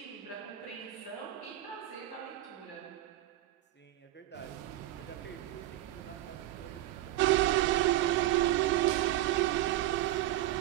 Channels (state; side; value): quieter; left; 14.9 dB